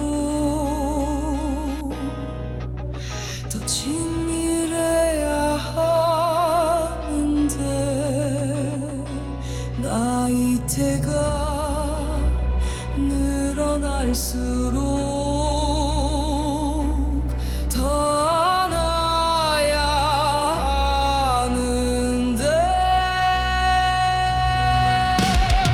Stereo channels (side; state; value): both; identical; correlation 1.00